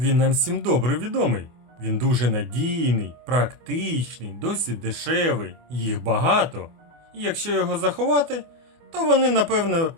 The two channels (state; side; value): late; left; 24 ms